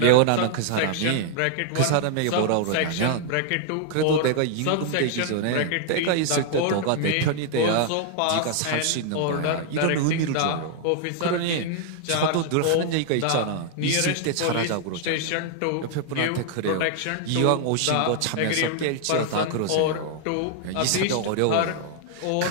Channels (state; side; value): different; both; correlation 0.00